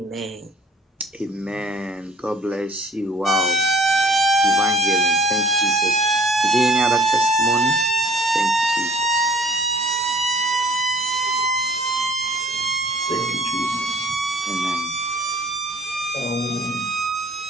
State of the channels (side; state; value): both; normal; correlation 0.54